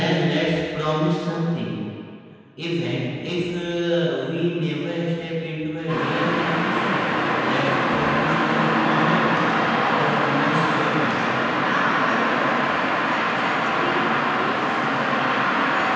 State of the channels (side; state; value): both; identical; correlation 1.00